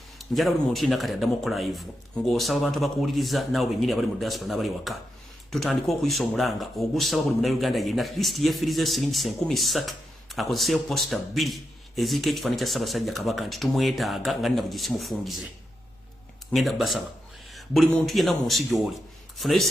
njala buli muntu yina kati addamu live ng'osaba abantu abakuwuliriza naawe bennyini abali mu diaspora n'abali waka tutandika okuyisa omulanga ogusaba buli Munnayuganda yenna at least yeefirize siringi 3,000 akozeseyo posta 2 eziriko ekifaananyi kya Ssaabasajja Kabaka nti tumwetaaga nga nina bugisimufungize ngenda basaba buli muntu yenna mu nsi gy'oli funayo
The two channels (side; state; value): both; normal; correlation 0.86